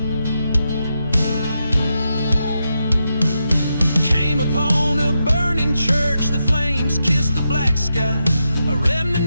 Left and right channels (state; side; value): inverted; both; correlation -0.86